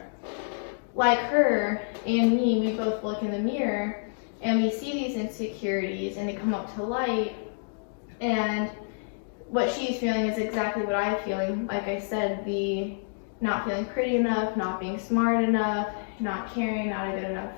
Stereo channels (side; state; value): right; silent; digital silence